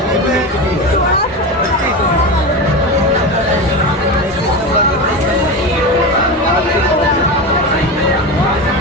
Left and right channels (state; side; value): normal; both; correlation 0.22